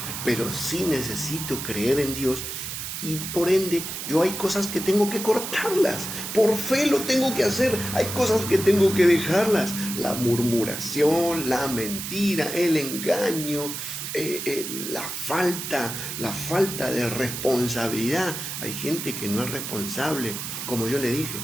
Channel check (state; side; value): noise; right; hiss, 6 dB below the sound